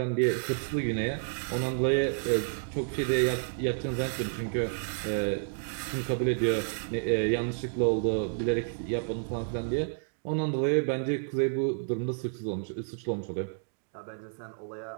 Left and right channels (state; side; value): silent; left; digital silence